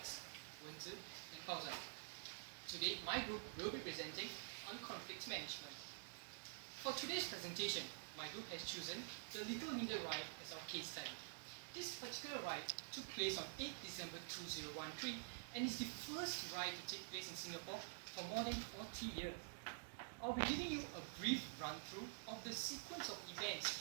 Wenzi and Fauzan. Today, my group will be presenting on conflict management. For today's presentation, my group has chosen the Little Media Riot as our case study. This particular riot took place on 8 December 2013 and is the first riot to take place in Singapore for more than 40 years. I'll be giving you a brief run-through of the sequence of events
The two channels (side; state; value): left; silent; digital silence